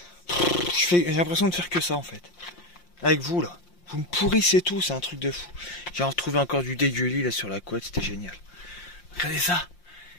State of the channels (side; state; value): right; late; 5.7 ms